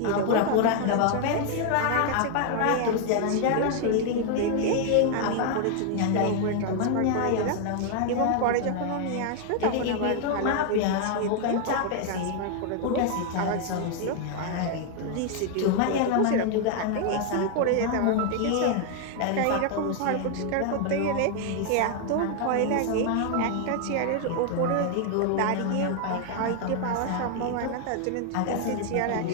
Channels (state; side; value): different; both; correlation 0.00